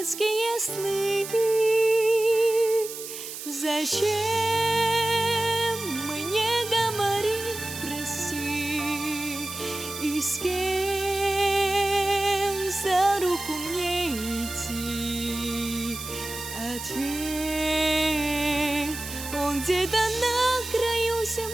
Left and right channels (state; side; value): noise; right; hiss, 10 dB below the sound